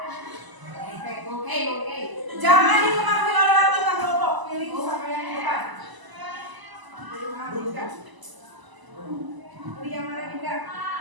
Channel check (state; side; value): late; left; 1.0 ms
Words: Jangan dipengaruhi oleh anggota kelompok. Pilih sama yang di depan. Pilih yang mana Dinda? Pilih yang mana Dinda?